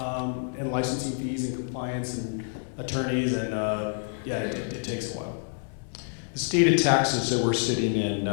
in licensing fees and compliance and attorneys, and it takes a while. The state of Texas that we're sitting in,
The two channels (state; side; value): silent; right; 60 dB below the other